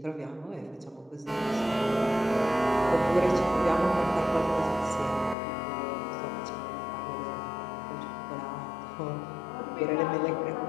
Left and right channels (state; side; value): drops out; right; at 5.4 s